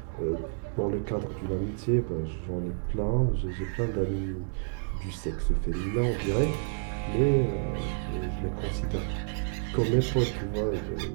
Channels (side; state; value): left; silent; digital silence